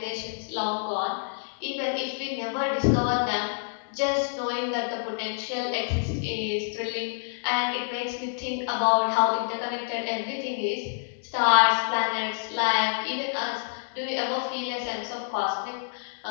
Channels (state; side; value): silent; right; digital silence